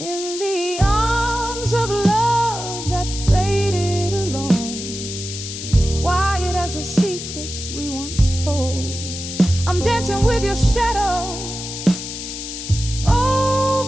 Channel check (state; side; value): noise; left; hiss, 8 dB below the sound